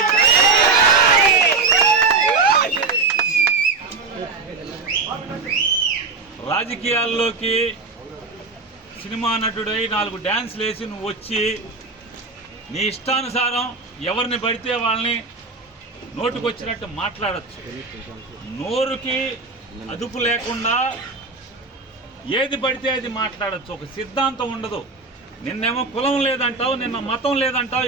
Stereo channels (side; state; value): left; quieter; 4.1 dB